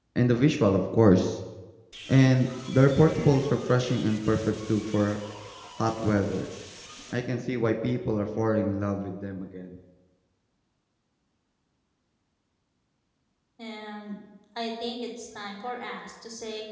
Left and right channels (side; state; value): both; identical; correlation 1.00